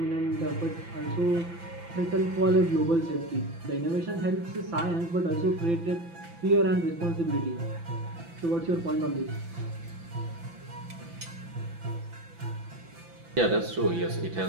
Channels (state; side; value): late; left; 5.9 ms